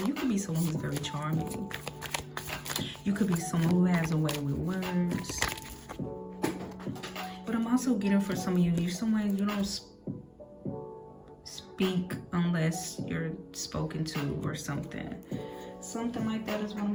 you could be someone who's very charming. You could be someone who has a way with words. But I'm also getting for some of you, you're someone you don't speak unless you're spoken to or something. Something like that is what I'm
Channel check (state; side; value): identical; both; correlation 1.00